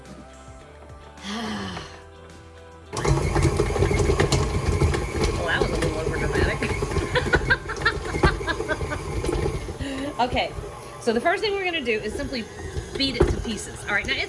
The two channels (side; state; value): both; identical; correlation 1.00